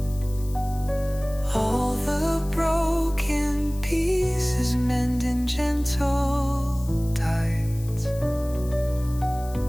All the broken pieces mend in gentle tides.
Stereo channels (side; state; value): left; noise; hiss, 19 dB below the sound